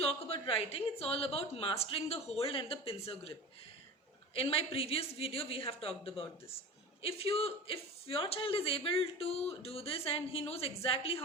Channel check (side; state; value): both; normal; correlation 0.33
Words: about writing, it's all about mastering the hold and the pincer grip. In my previous video, we have talked about this. If your child is able to do this and he knows exactly